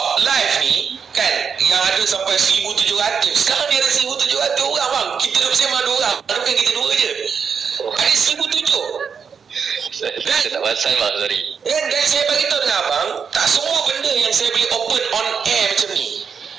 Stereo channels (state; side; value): quieter; left; 6.4 dB